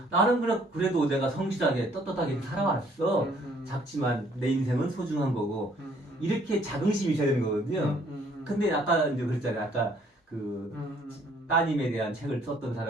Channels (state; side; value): normal; both; correlation 0.62